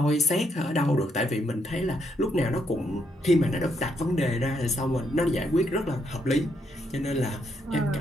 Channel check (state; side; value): normal; both; correlation 0.75